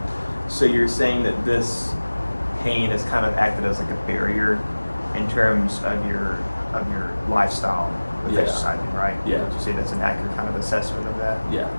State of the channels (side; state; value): both; inverted; correlation -1.00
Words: So you're saying that this pain has kind of acted as like a barrier in terms of your lifestyle with Yeah. exercising, right? Yeah. Would you say that's an accurate kind of assessment of that? yeah.